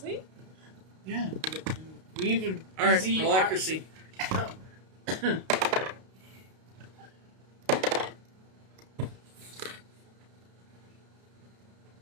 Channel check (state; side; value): late; left; 32 ms